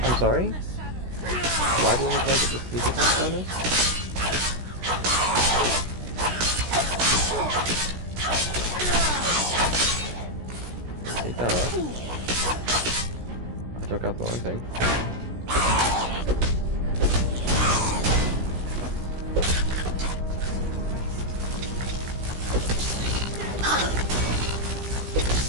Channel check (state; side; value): late; left; 16 ms